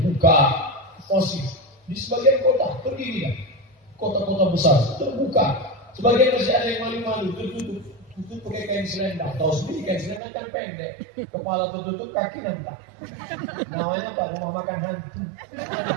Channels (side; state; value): left; drops out; at 10.2 s